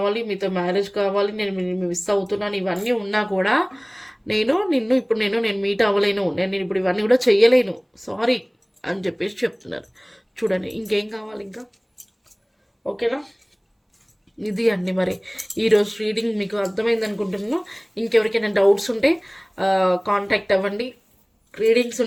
మీతో మ్యారేజ్ కావాలి, నేను మిస్ అవుతున్నాను, ఇవన్నీ ఉన్నా కూడా నేను మీట్ అవ్వలేను, నేను ఇప్పుడు ఇవన్నీ కూడా చెయ్యలేను, సారీ అని చెప్పేసి చెప్తున్నారు. చూడండి ఇంకేం కావాలి ఇంకా, ఓకేనా? ఇది అండి మరి ఈరోజు రీడింగ్ మీకు అర్థమైంది అనుకుంటున్నాను. ఇంకెవరికైనా డౌట్స్ ఉంటే కాంటాక్ట్ అవ్వండి, రీడింగ్స్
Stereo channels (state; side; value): identical; both; correlation 1.00